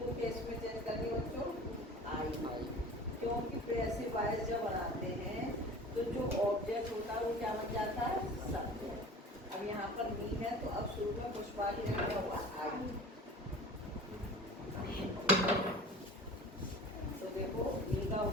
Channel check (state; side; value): normal; both; correlation 0.40